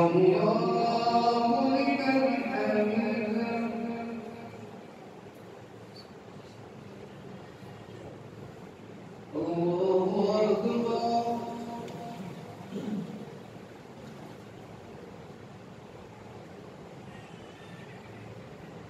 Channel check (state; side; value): identical; both; correlation 1.00